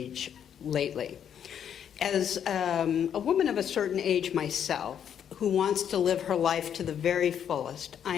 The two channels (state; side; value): quieter; right; 8.9 dB